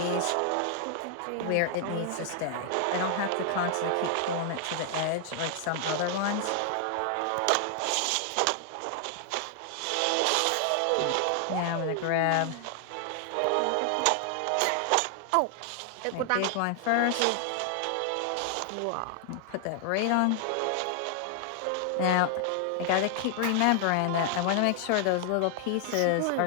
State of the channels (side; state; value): both; different; correlation 0.00